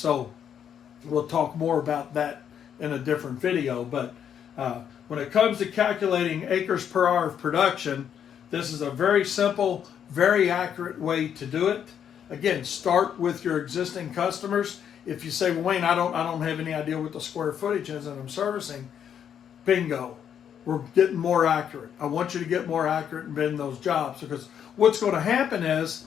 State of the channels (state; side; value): quieter; right; 8.7 dB